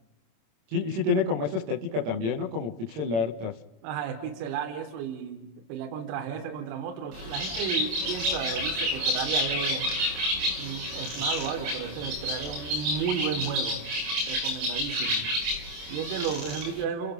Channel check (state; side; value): late; left; 27 ms